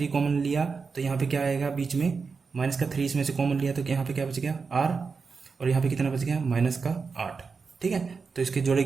कॉमन लिया तो यहाँ पे क्या आएगा बीच में माइनस का 3 इसमें से कॉमन लिया तो यहाँ पे क्या बच गया r, और यहाँ पे कितना बच गया माइनस का 8। ठीक है, तो इसके जोड़े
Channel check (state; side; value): quieter; left; 5.0 dB